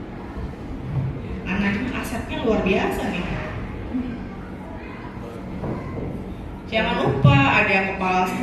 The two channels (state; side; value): identical; both; correlation 1.00